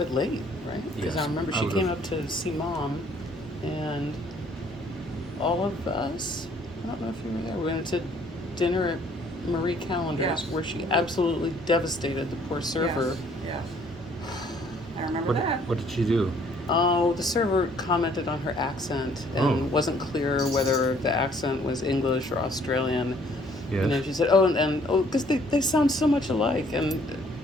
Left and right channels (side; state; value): both; normal; correlation 0.61